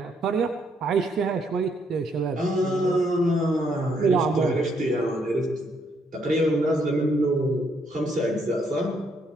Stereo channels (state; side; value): normal; both; correlation 0.72